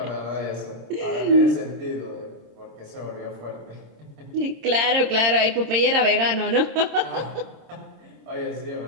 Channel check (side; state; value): left; late; 26 ms